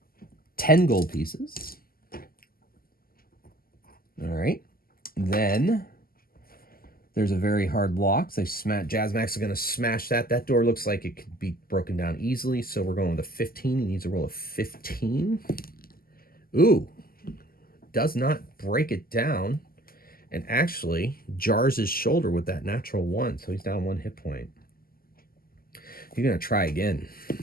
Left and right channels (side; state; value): right; late; 0.42 ms